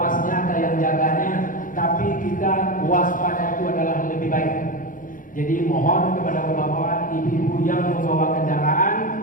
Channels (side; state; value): right; late; 0.39 ms